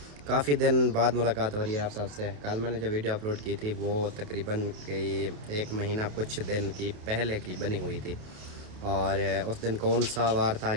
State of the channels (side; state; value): left; late; 28 ms